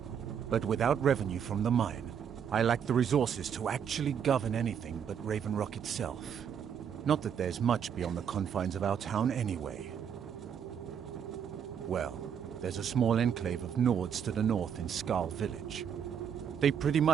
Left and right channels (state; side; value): quieter; left; 8.0 dB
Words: but without revenue from the mine, I lack the resources to actually govern anything but Raven Rock itself. Not that there's much beyond the confines of our town anyway. Well, there's a small enclave of Nords to the north in Skal Village. They pretty